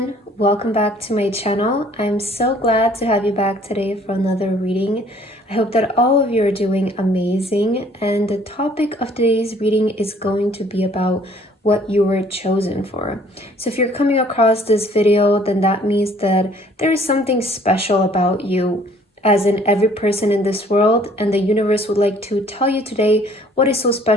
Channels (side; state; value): both; normal; correlation 0.57